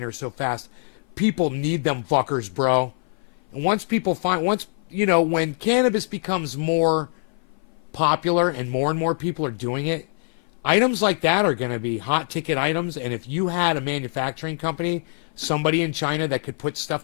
so fast. People need them fuckers, bro. And once when cannabis becomes more popular and more people are doing it, items like that are going to be hot ticket items. And if you had a manufacturing company, somebody in China that could put stuff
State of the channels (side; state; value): right; silent; 56 dB below the other